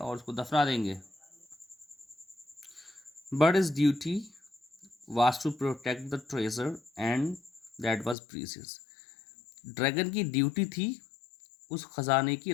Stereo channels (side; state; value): right; drops out; at 8.2 s